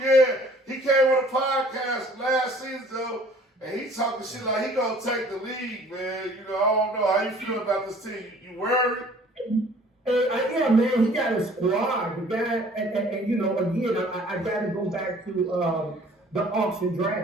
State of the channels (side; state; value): both; normal; correlation 0.53